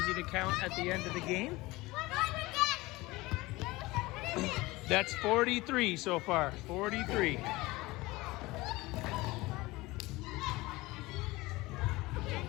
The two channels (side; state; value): right; quieter; 20.9 dB